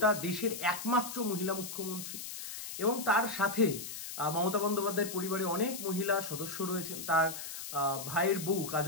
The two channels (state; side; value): noise; left; hiss, 8 dB below the sound